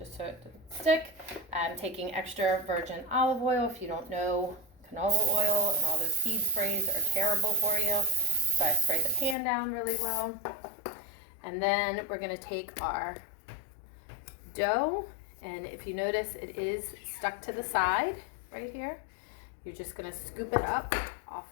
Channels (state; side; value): drops out; right; at 9.3 s